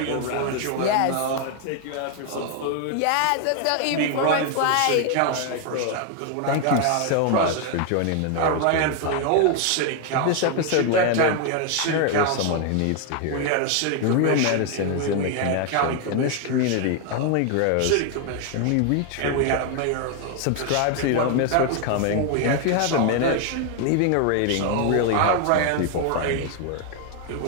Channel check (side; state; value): both; different; correlation 0.01